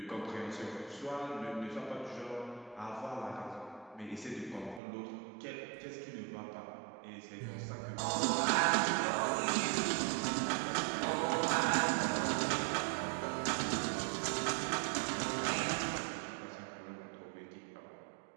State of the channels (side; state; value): left; drops out; at 4.8 s